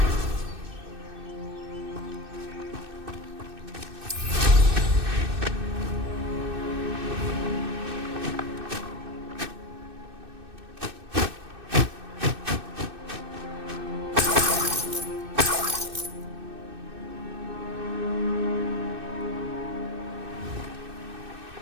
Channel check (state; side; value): late; left; 2.6 ms